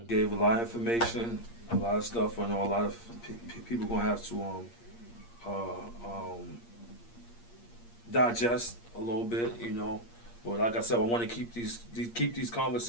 Gave a lot of information, a lot of stuff. I know a lot of people gonna have to digest a little bit, you know. But like I said, I want to keep these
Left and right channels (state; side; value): late; right; 8.6 ms